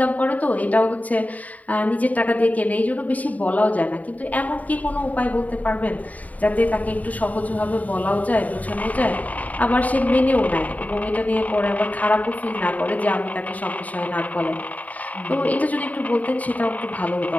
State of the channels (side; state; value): right; late; 0.072 ms